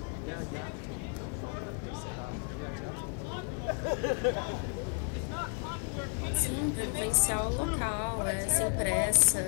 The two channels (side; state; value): right; quieter; 38.7 dB